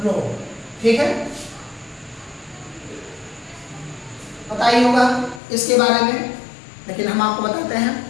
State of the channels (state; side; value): drops out; right; at 5.4 s